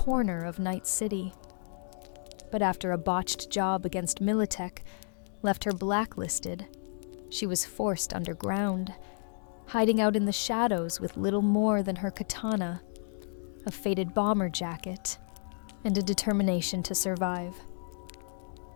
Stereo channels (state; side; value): silent; right; digital silence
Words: of Night City. But after a botched job against Militech left her blacklisted, she was forced underground, hiding out in the shadows with little more than her katana, a faded bomber jacket, and a determination to survive.